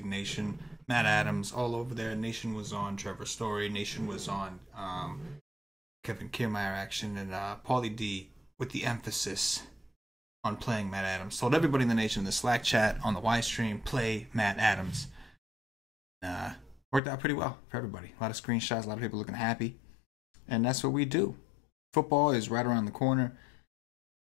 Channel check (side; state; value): right; drops out; at 17.0 s